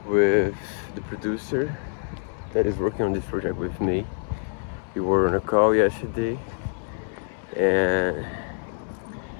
with the producer that is working on this project with me. We were on a call yesterday, and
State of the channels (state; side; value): silent; right; digital silence